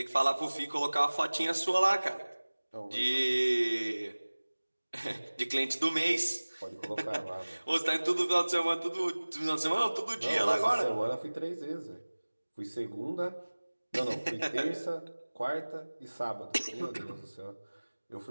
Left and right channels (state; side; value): inverted; both; correlation -1.00